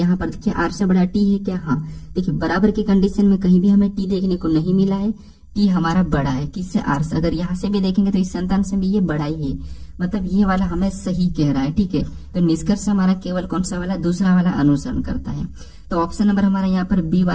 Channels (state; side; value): identical; both; correlation 1.00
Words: पर देखिए आर से बड़ा टी है क्या, हाँ देखिए बराबर की कंडीशन में कहीं भी हमें टी देखने को नहीं मिला है, टी हमारा बड़ा है किससे, आर से। अगर यहाँ से भी देखेंगे तो इस संतान से भी ये बड़ा ही है, मतलब ये वाला हमें सही कह रहा है। ठीक है, तो निष्कर्ष हमारा केवल कौन सा वाला, दूसरा वाला अनुसरण करता है। तो ऑप्शन नंबर हमारा यहाँ पर बी